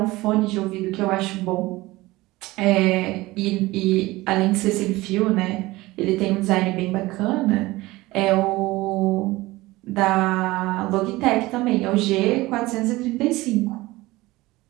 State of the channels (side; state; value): left; quieter; 19.6 dB